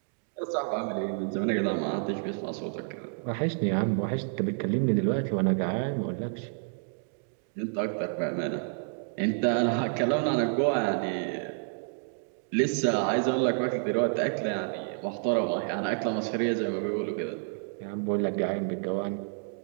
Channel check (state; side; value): silent; left; digital silence